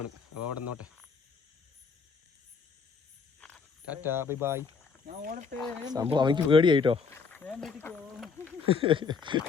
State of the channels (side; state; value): right; quieter; 5.4 dB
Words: അപ്പോൾ അവിടെ നിന്നോട്ടെ. Tata, bye bye. സംഭവം അവനിക്ക് പേടിയായിട്ടോ.